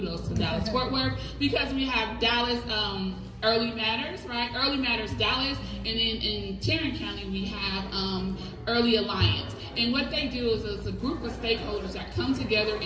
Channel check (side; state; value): both; identical; correlation 1.00